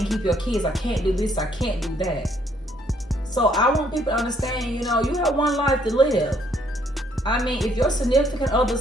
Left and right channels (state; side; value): normal; both; correlation 0.67